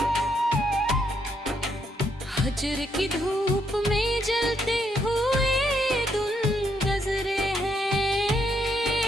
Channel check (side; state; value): both; normal; correlation 0.75